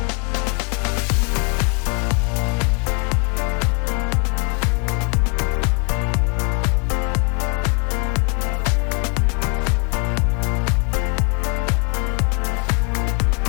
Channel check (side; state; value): right; quieter; 36.0 dB